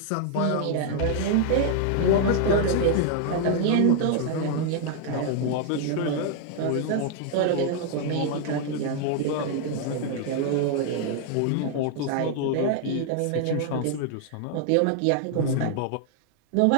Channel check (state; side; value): different; both; correlation 0.00